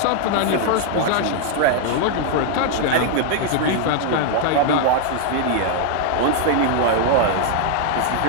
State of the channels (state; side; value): different; both; correlation 0.00